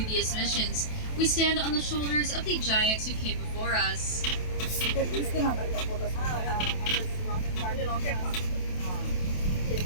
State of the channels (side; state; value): right; late; 27 ms